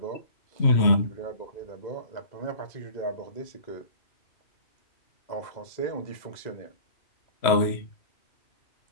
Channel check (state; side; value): late; right; 3.0 ms